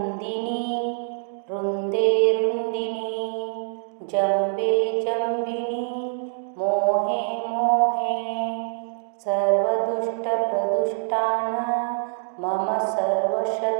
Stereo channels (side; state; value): left; silent; digital silence